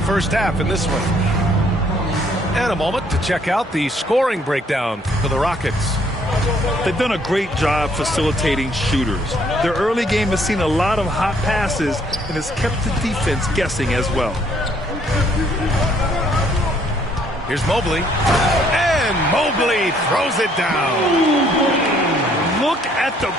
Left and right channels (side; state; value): both; normal; correlation 0.65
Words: half in this one. And a moment to check out the scoring breakdown for the Rockets. They've done a great job facilitating shooters. Their early game has seen a lot of hot passes and has kept the defense guessing as well. Here's Mobley. And Mobley throws it down. Look at the